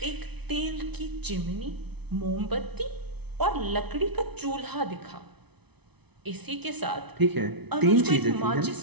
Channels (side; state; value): left; late; 0.99 ms